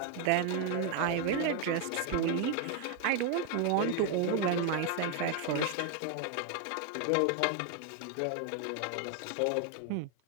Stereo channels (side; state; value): both; different; correlation 0.01